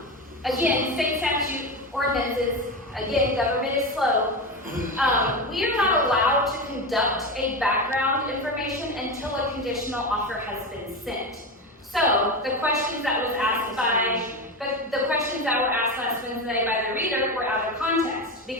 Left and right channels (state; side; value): normal; both; correlation 0.19